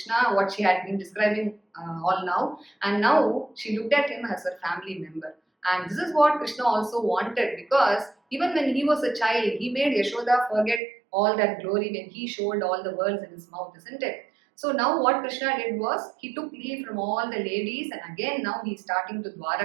what she had been describing all now. And now she looked at him as her family member. And this is what Krishna also wanted, because even when he was a child, he made Yashoda forget all that glory when he showed all the worlds in his mouth, isn't it? So now what Krishna did was, he took leave from all the ladies, and again now he is starting to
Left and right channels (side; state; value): left; drops out; at 10.8 s